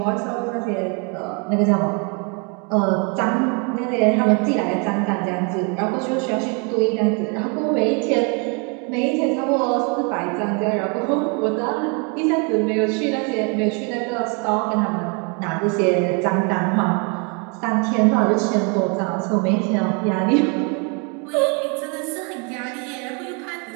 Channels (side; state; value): left; quieter; 34.4 dB